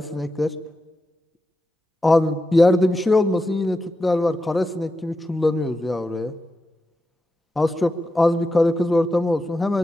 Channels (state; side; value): normal; both; correlation 0.90